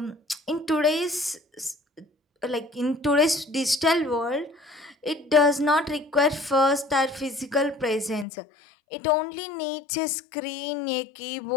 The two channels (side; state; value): right; drops out; at 8.2 s